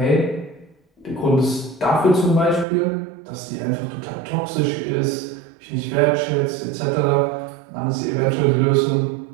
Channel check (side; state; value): left; drops out; at 2.7 s